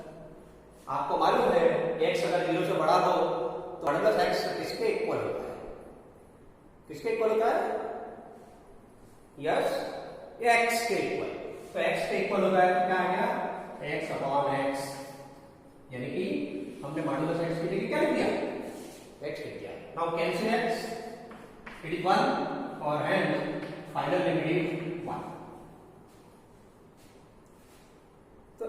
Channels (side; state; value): both; identical; correlation 1.00